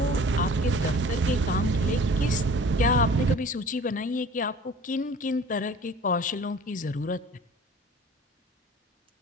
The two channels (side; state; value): both; normal; correlation 0.45